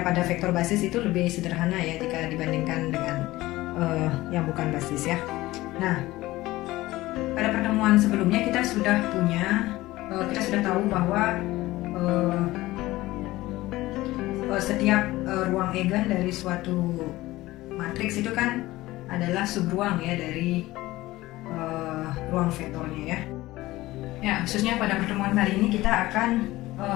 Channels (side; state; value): right; quieter; 18.0 dB